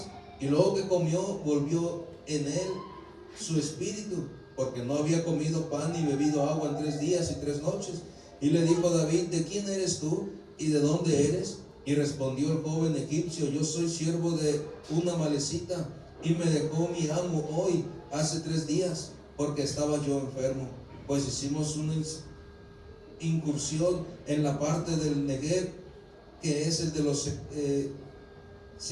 Y luego que comió, volvió en él su espíritu, porque no había comido pan ni bebido agua en 3 días y 3 noches. Y le dijo David, ¿de quién eres tú y de dónde eres? Y respondió el joven egipcio, yo soy siervo de una amalecita, y me dejó mi amo hoy, hace 3 días, porque estaba yo enfermo. Pues hicimos una incursión en la parte del Negev, que es el de los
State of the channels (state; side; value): identical; both; correlation 1.00